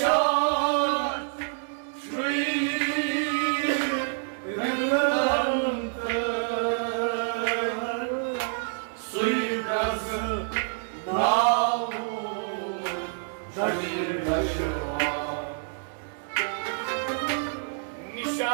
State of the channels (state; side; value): silent; left; 60 dB below the other